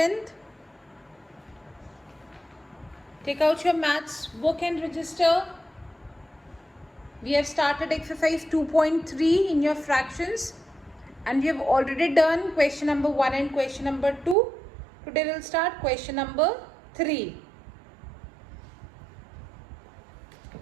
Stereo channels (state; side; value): drops out; left; at 14.4 s